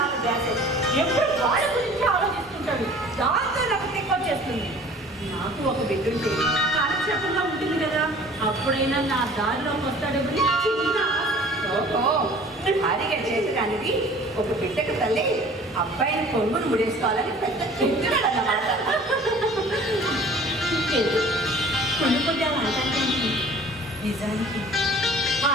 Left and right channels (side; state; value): both; normal; correlation 0.48